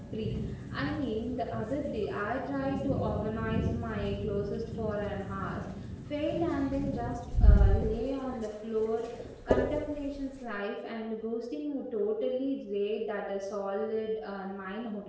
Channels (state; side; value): identical; both; correlation 1.00